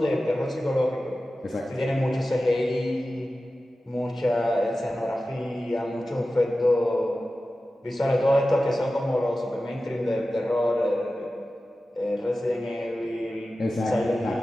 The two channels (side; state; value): both; normal; correlation 0.94